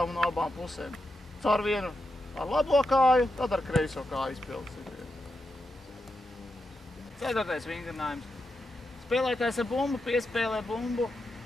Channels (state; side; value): normal; both; correlation 0.86